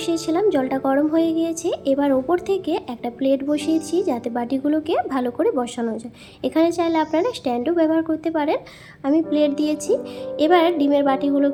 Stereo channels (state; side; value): identical; both; correlation 1.00